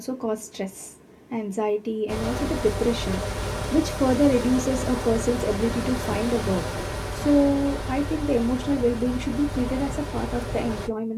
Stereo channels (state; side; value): identical; both; correlation 1.00